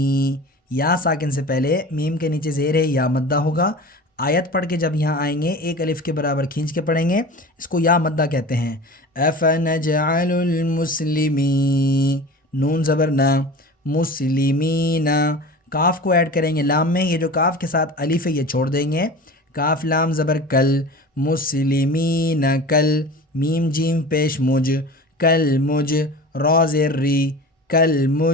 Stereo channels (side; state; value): both; normal; correlation 0.36